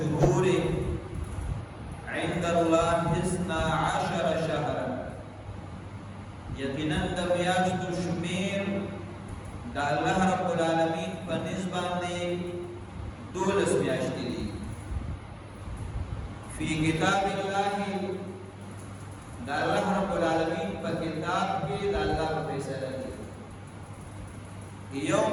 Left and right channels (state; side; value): identical; both; correlation 1.00